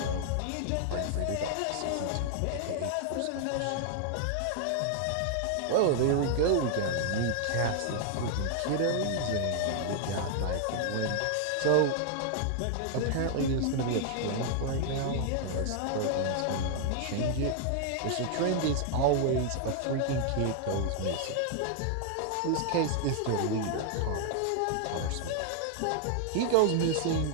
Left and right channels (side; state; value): both; different; correlation 0.00